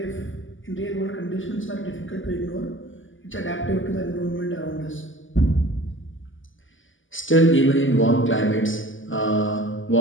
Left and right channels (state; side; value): late; right; 0.57 ms